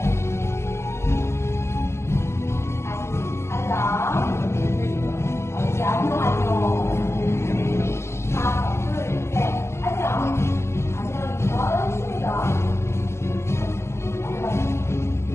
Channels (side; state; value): right; late; 0.13 ms